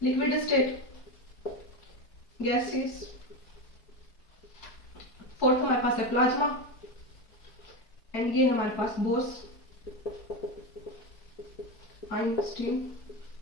Liquid state, gases. Fourth हमारे पास है प्लाज्मा, एंड ये हमारे पास बोर्स, आइंस्टीन,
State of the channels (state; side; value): late; right; 4.5 ms